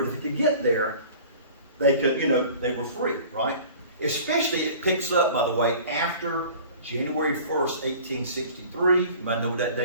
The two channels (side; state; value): both; inverted; correlation -0.44